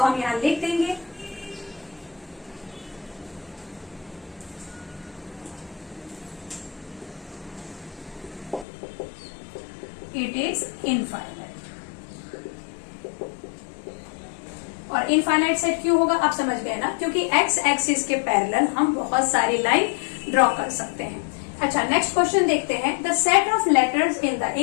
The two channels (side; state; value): right; drops out; at 8.7 s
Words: हम यहां लिख देंगे इट इज इनफाइनाइट। और इनफाइनाइट सेट क्यों होगा आप समझ गए ना, क्योंकि एक्स एक्सिस के पैरेलल हम बहुत सारी लाइन ड्रॉ कर सकते हैं। अच्छा, नेक्स्ट क्वेश्चन देखते हैं। The set of letters in the